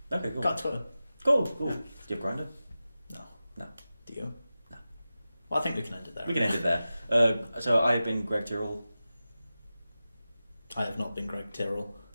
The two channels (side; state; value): both; inverted; correlation -0.94